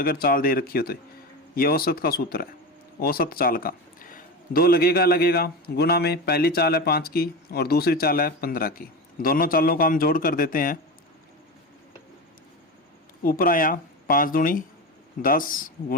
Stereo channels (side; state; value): both; normal; correlation 0.22